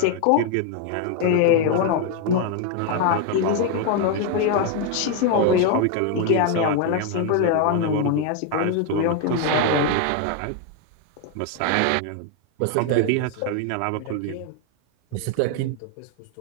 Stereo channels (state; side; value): different; both; correlation 0.01